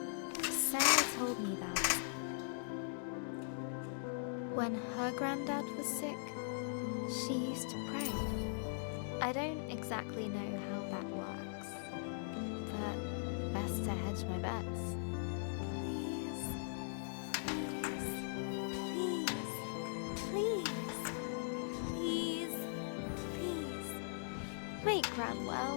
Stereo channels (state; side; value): silent; right; digital silence